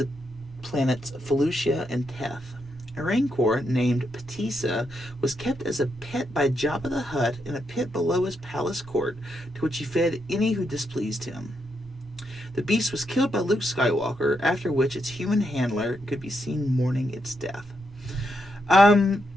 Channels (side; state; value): both; normal; correlation 0.81